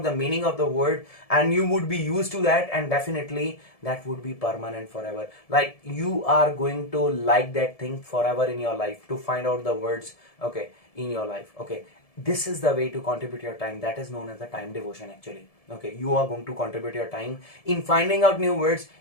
the meaning of the word, and you would be used to that, and definitely that would be permanent forever. Like you are going to like that thing forever in your life, to find out the words, okay, in your life, okay. This is the way to contribute your time. That is known as the time devotion, actually, okay. You are going to contribute your time in finding out new words,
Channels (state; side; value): late; right; 1.7 ms